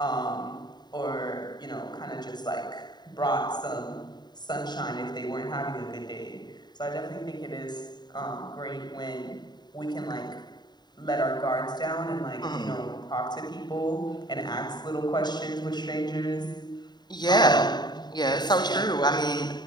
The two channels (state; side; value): late; right; 0.21 ms